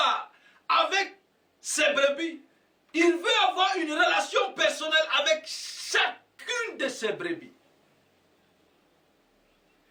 avec ses brebis, il veut avoir une relation personnelle avec chacune de ses brebis.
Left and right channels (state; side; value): identical; both; correlation 1.00